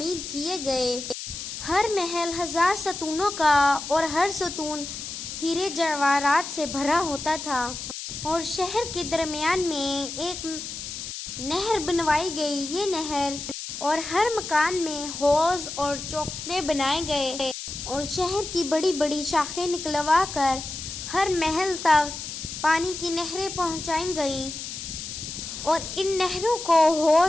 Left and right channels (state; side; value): noise; left; hiss, 8 dB below the sound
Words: کیے گئے۔ ہر محل 1000 ستونوں کا اور ہر ستون ہیرے جواہرات سے بھرا ہوتا تھا، اور شہر کے درمیان میں ایک نہر بنوائی گئی۔ یہ نہر اور ہر مکان میں حوض اور چوکھٹے بنائے گئے، اور شہر کی بڑی بڑی شاخیں نکلوا کر ہر محل تک پانی کی نہریں پہنچائی گئیں، اور ان نہروں کو